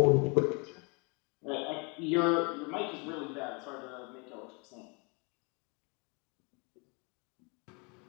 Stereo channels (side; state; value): right; quieter; 31.6 dB